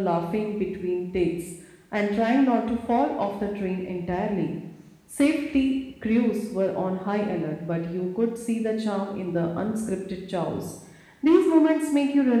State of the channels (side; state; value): both; identical; correlation 1.00